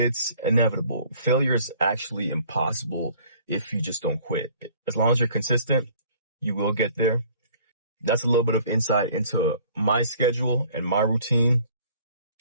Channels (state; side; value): inverted; both; correlation -0.54